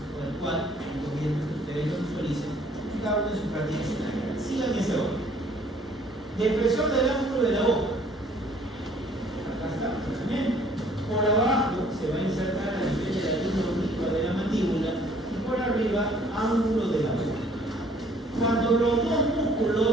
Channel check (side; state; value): both; normal; correlation 0.59